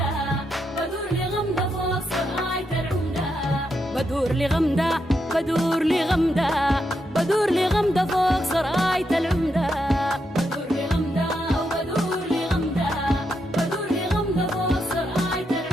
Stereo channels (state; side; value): normal; both; correlation 0.82